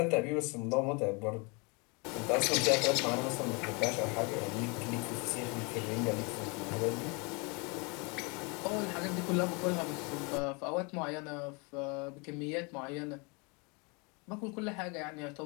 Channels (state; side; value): quieter; right; 30.8 dB